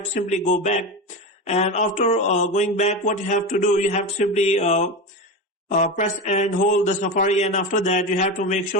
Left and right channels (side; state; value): both; normal; correlation 0.21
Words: to simply go back. And after going back, what you have to do, you have to simply press and hold the Safari, and after that you have to make